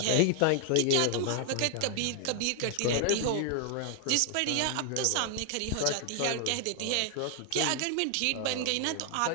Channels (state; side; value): different; both; correlation 0.00